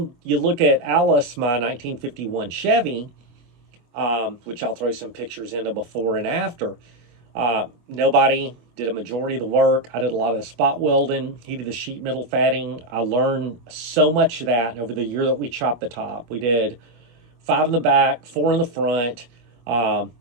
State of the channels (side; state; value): left; late; 24 ms